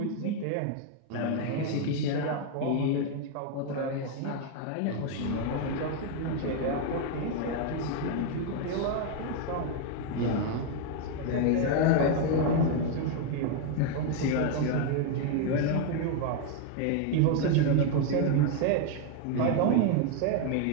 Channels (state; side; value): different; both; correlation 0.01